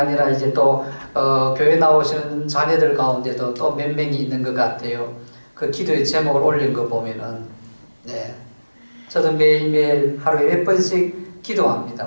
이제 또 교회 나오시는 자녀들 가운데도 또 몇 명이 있는 것 같아요. 그 기도의 제목을 올린 거 보면은 네, 저도 매일매일 하루에 몇 번씩 기도합니다.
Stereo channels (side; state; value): both; inverted; correlation -1.00